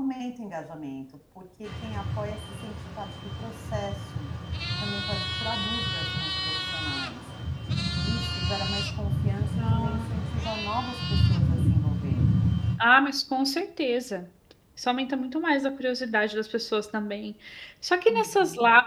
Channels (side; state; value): both; identical; correlation 1.00